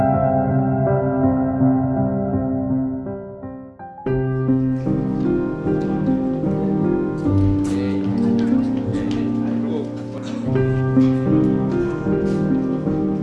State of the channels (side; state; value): both; identical; correlation 1.00